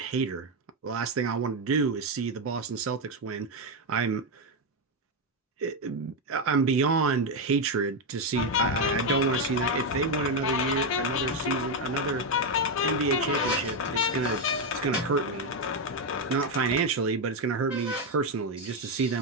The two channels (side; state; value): both; normal; correlation 0.06